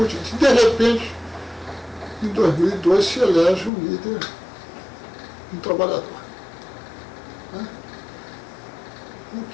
diante. De repente, em 2002 se elege um líder, um trabalhador. Né?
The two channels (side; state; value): right; drops out; at 3.7 s